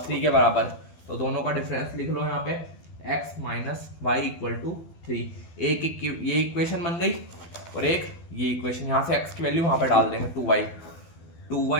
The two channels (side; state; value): right; late; 12 ms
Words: के बराबर, तो दोनों का डिफरेंस लिख लो यहाँ पे x - y = 3। एक ये इक्वेशन बन गई और एक ये इक्वेशन, यहाँ से x की वैल्यू वहाँ पे डाल देंगे 2y - y